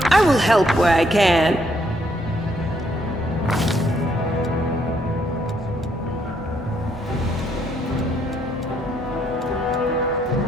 I will help where I can.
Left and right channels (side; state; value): both; normal; correlation 0.71